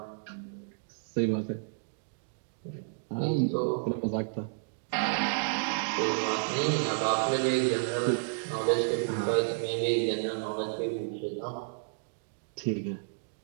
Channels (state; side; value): silent; left; digital silence